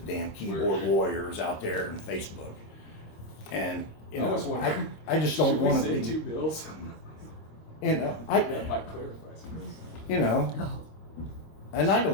damn keyboard warriors out there on Facebook. And, I was wondering, I just don't should we want say to 2 be, bills? That might clarify some. Oh, and I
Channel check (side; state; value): right; late; 26 ms